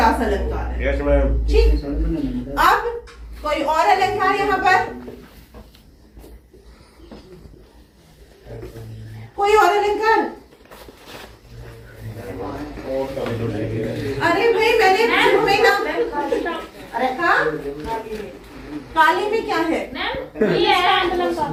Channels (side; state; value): both; identical; correlation 1.00